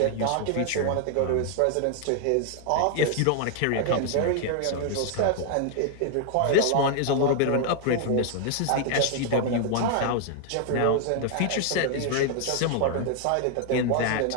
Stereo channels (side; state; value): both; different; correlation 0.00